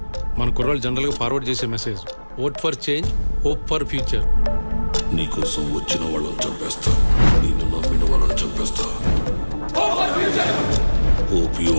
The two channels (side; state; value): both; inverted; correlation -1.00